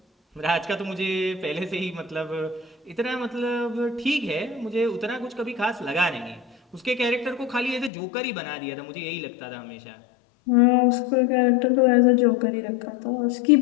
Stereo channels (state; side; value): drops out; right; at 7.9 s